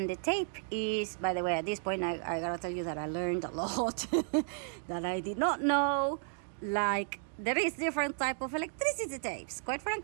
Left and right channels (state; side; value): silent; left; 55 dB below the other